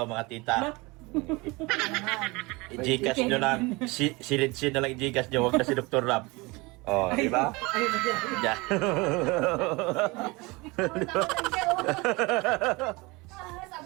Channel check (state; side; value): quieter; left; 24.5 dB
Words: mga tita. I-Gcash nyo lang. Silid-sin na lang i-Gcash nyo. Huwag na si Dr. Lab. Oh, di ba? Yeah.